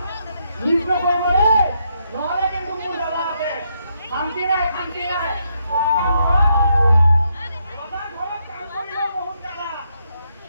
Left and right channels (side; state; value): both; inverted; correlation -0.78